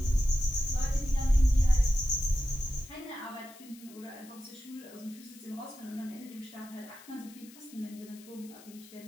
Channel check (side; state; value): left; noise; hiss, 21 dB below the sound